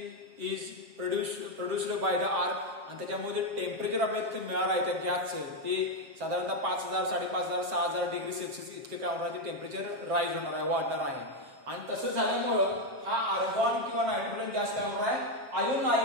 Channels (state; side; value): late; left; 7.6 ms